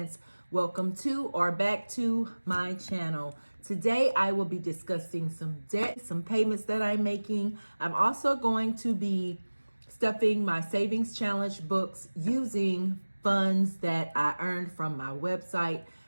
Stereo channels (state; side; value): inverted; both; correlation -1.00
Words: Welcome to or back to my channel. Today I will be discussing some debt, some payments that I'm making. I'm also going to be stuffing my savings challenge books using funds that I earned from my website,